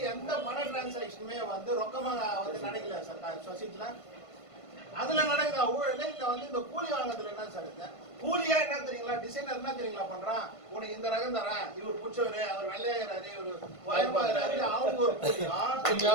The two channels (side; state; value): right; late; 1.5 ms